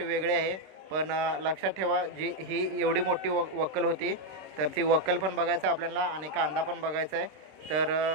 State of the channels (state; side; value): late; left; 26 ms